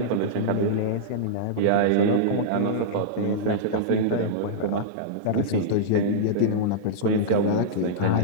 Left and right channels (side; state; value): both; different; correlation -0.03